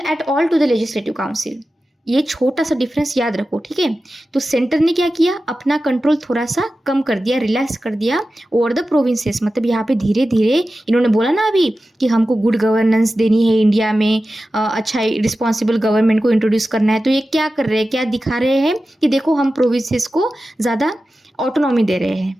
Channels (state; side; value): normal; both; correlation 0.94